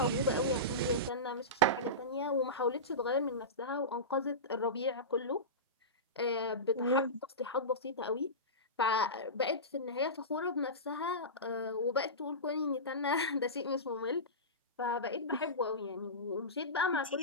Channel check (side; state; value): both; normal; correlation -0.19